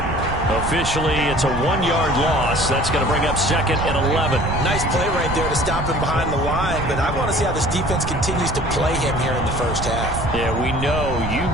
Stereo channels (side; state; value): right; noise; rumble, 5 dB below the sound